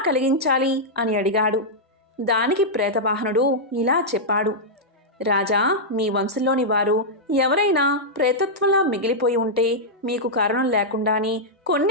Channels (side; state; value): both; normal; correlation -0.08